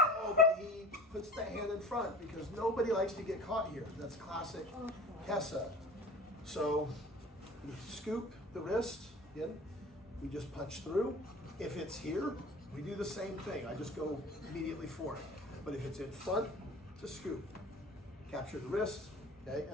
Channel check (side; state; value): both; normal; correlation 0.40